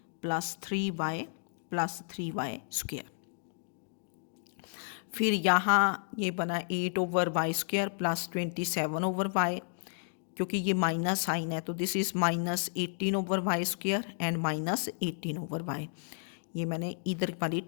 plus 3y plus 3y square, फिर यहाँ ये बना 8 over y square plus 27 over y, क्योंकि ये माइनस साइन है तो this is -18/y² and -18/y। ये मैंने इधर वाली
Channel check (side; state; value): right; silent; digital silence